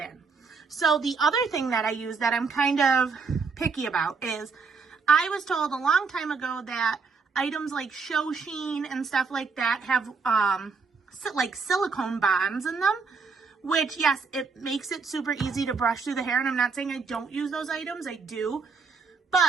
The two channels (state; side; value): quieter; left; 4.9 dB